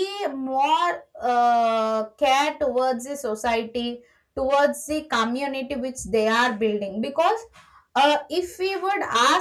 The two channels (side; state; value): both; identical; correlation 1.00